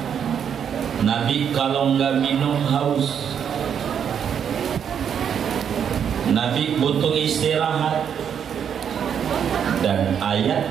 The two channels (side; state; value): left; quieter; 8.1 dB